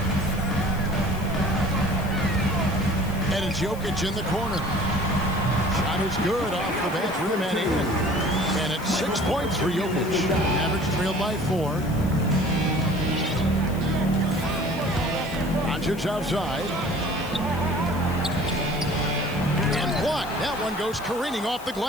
And it's Jokic in the corner. Shot is good off the bat, rim and in. And it's 6 points for Jokic. Average trailed by 4. Doncic outside. And blocked. That one goes careening off the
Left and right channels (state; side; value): noise; left; hiss, 19 dB below the sound